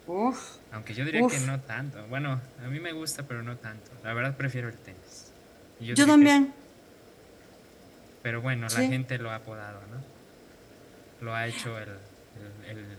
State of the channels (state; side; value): identical; both; correlation 1.00